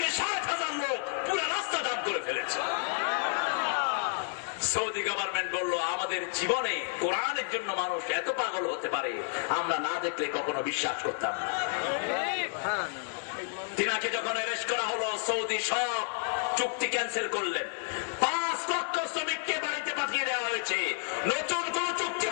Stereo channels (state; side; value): silent; right; 57 dB below the other